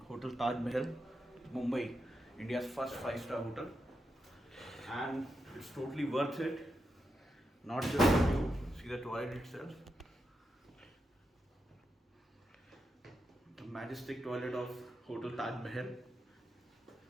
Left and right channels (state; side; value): normal; both; correlation 0.86